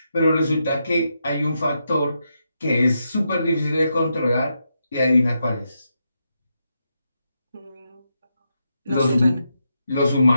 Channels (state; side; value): inverted; both; correlation -0.84